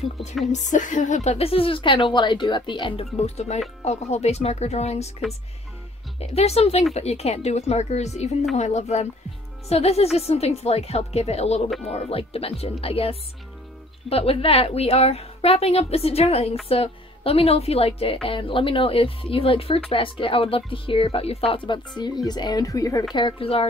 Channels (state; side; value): normal; both; correlation 0.56